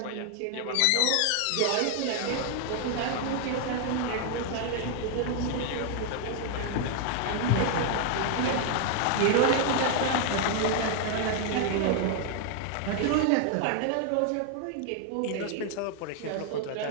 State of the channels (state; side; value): different; both; correlation 0.00